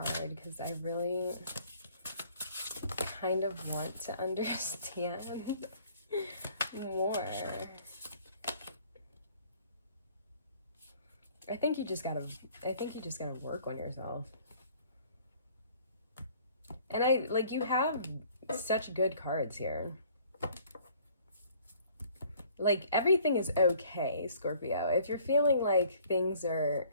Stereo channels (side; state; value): both; inverted; correlation -0.56